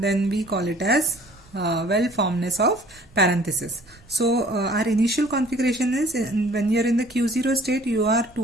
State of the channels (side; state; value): right; noise; rumble, 27 dB below the sound